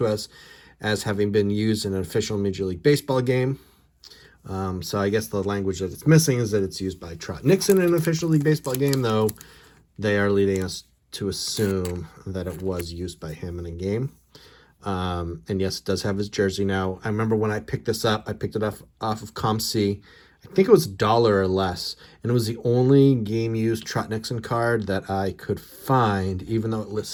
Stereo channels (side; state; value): both; identical; correlation 1.00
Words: us as having been used in an official Major League Baseball game. So I guess the language that it's missing is that it's used by Trot Nixon in an official League Baseball game, though they are leading us to assume that it was used by him in a game. And yes, it does have his jersey. Now, I remember when I picked this up, I picked it off of ComC. I think it was $1 or less, and it was the only game-used Trot Nixon card that I could find, even though it